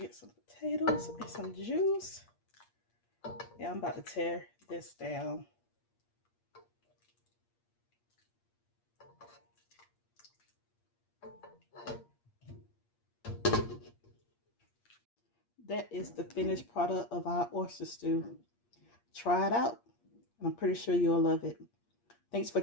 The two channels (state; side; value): late; right; 8.5 ms